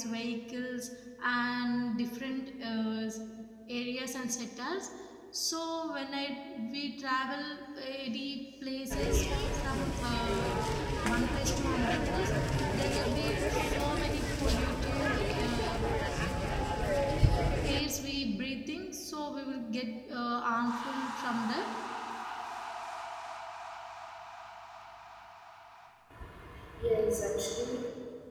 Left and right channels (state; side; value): identical; both; correlation 1.00